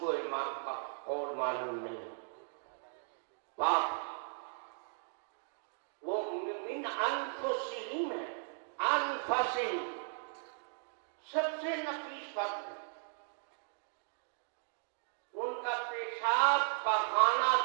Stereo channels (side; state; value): left; silent; digital silence